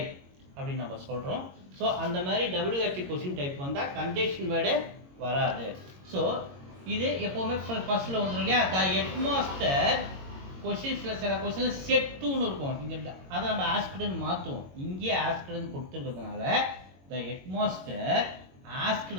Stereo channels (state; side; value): late; left; 22 ms